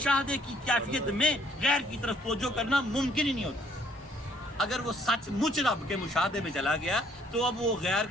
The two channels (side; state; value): both; normal; correlation 0.64